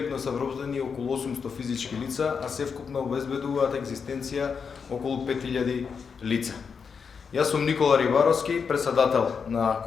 се вробени околу 800 физички лица, а севкупно обезбедуваат екзистенција околу 5000 лица. Јас сум Никола Рибаровски, председател на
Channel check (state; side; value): quieter; right; 6.0 dB